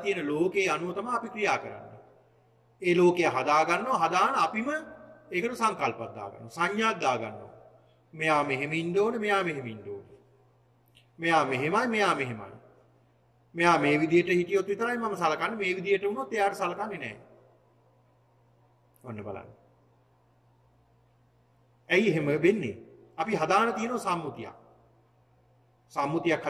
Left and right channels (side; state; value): both; identical; correlation 1.00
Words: තියෙන ලෝකේ අනුව තමයි අපි ක්‍රියා කරන්නේ. ඒ ලෝකය හදා ගන්නවා. හදාන අපිම ඒකට සංකල්පයක් දාගන්නවා. සංඥාවක් දාගන්නවා. මෙයා මෙහෙම ඉන්න ඕනේ, මෙයා මෙහෙම ඉන්න ඕනේ. මෙයා මෙහෙමයි, මෙයා මෙහෙමයි. මෙයා මේ විදිහට හිටියොත් විතරයි මම සලකන්නේ. මේ විදිහට වුණොත් එයාට සලකන්නේ නැහැ. ඔන්න බලන්න. ඇයි එහෙම වෙන්නේ? අපි හදාන තියෙන සම්මුතියක්. සම්මුතියක්